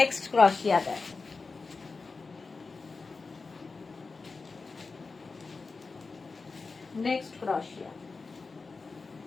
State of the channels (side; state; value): right; quieter; 4.2 dB